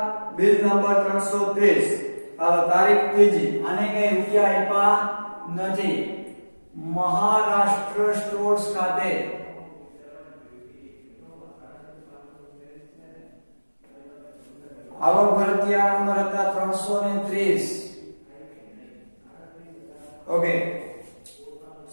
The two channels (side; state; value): both; inverted; correlation -1.00